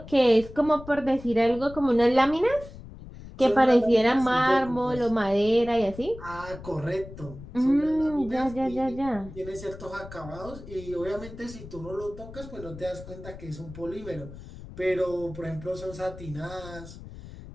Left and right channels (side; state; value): left; noise; rumble, 15 dB below the sound